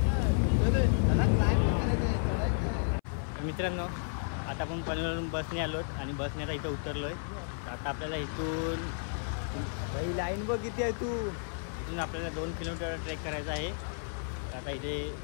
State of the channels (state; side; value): silent; right; 56 dB below the other